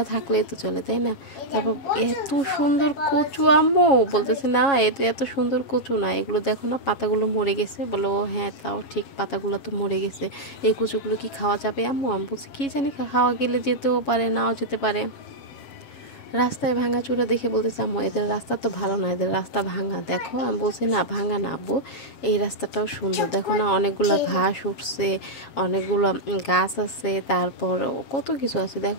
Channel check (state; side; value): late; right; 7.2 ms